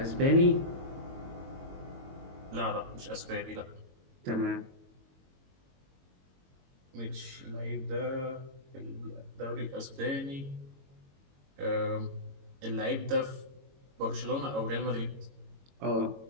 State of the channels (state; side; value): late; left; 22 ms